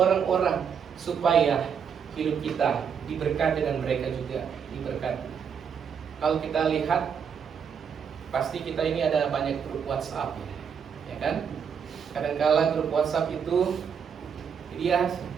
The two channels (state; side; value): quieter; left; 7.2 dB